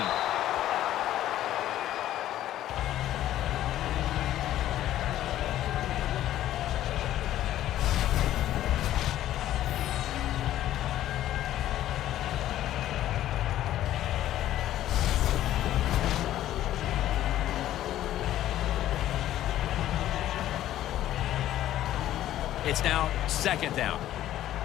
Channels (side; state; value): right; quieter; 13.0 dB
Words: It's now second down.